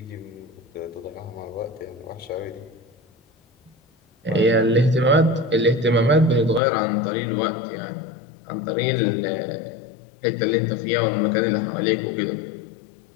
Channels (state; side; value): drops out; right; at 6.6 s